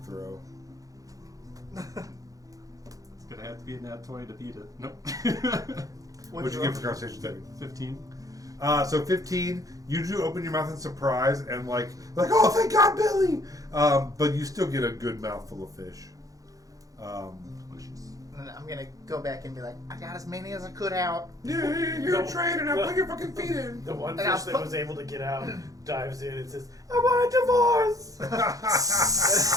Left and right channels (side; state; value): left; late; 0.17 ms